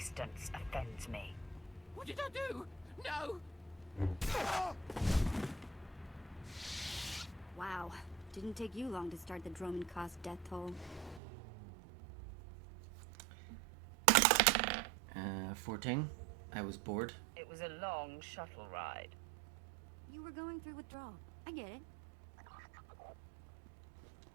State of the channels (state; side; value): drops out; left; at 11.2 s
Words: offends me. What did I do? No! Wow. Didn't take you long to start the Dromund Kaas death toll. 14. I was bored. It was a long shuttle ride. You were going through withdrawal. I get it.